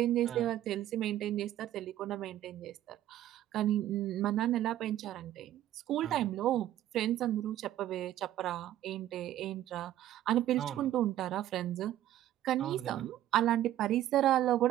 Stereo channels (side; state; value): left; quieter; 12.9 dB